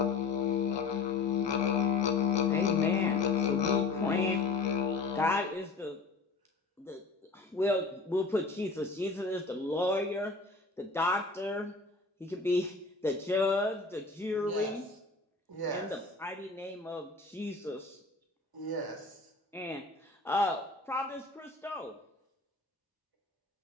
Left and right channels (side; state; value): right; quieter; 3.9 dB